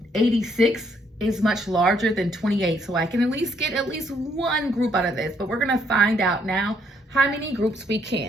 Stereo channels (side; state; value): both; normal; correlation 0.69